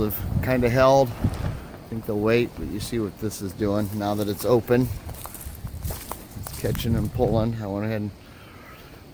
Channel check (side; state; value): both; identical; correlation 1.00